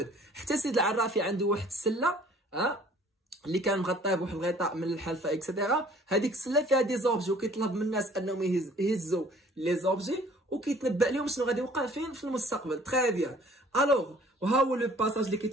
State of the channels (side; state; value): both; normal; correlation 0.54